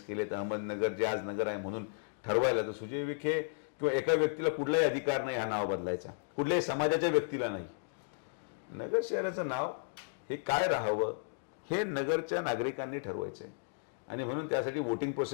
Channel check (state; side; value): silent; right; digital silence